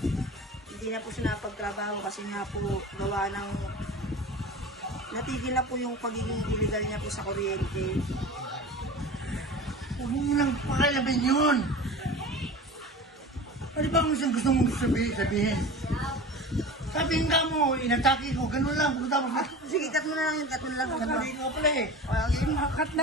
Hindi na po siya napagtrabaho kasi nga po gawa ng natigil na po yung pagiging illegal niya po sa kuryente. Huwag mo lang pakalaban yun. Ano ba ang gusto mong sabihin? Sabihin ka mo, inatake ko, ganun lang. Tapos na, Sige, cut mo na lang yun, cut mo na lang. sabihin ko pala eh. Cut na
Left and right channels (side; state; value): both; normal; correlation 0.34